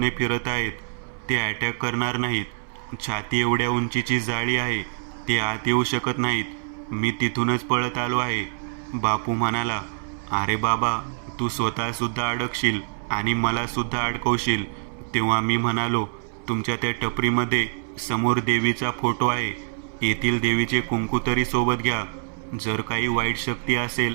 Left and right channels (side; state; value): left; silent; 59 dB below the other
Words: फिरत आहेत. ते अटॅक करणार नाहीत. छाती एवढ्या उंचीची जाळी आहे, ते आत येऊ शकत नाहीत. मी तिथूनच पळत आलो आहे. बापू म्हणाला, अरे बाबा, तू स्वतःसुद्धा अडकशील आणि मला सुद्धा अडकवशील. तेव्हा मी म्हणालो, तुमच्या त्या टपरीमध्ये समोर देवीचा फोटो आहे. येथील देवीचे कुंकू तरी सोबत घ्या. जर काही वाईट शक्ती असेल,